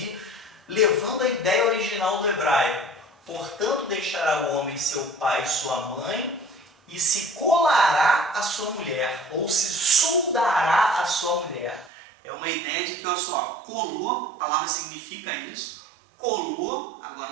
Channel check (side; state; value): left; drops out; at 11.9 s